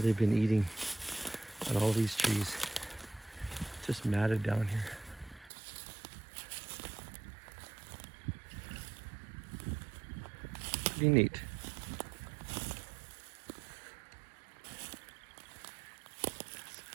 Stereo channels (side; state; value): left; drops out; at 5.5 s